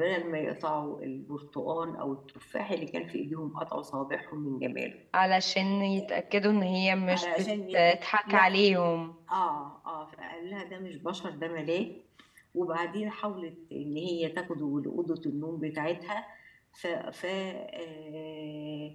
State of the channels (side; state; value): both; identical; correlation 1.00